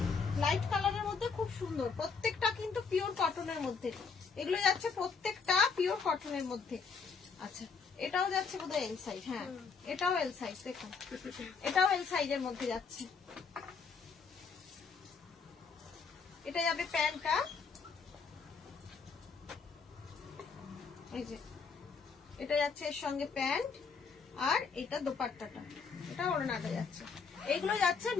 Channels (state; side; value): quieter; right; 5.4 dB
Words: লাইট কালারের মধ্যে খুব সুন্দর, প্রত্যেকটা কিন্তু পিওর কটনের মধ্যে। এগুলো যাচ্ছে প্রত্যেকটা পিওর কটনের মধ্যে। আচ্ছা, এটাও যাচ্ছে বোধহয় এল সাইজ। হ্যাঁ, এটাও এল সাইজ। দেখুন এটাও এল সাইজের মধ্যে যাচ্ছে। এটা যাবে প্যান্টটা, এই যে এটা যাচ্ছে এর সঙ্গে প্যান্ট, আর এটা দোপাট্টাটা, এটা ওড়নাটা যাচ্ছে। এগুলো যাচ্ছে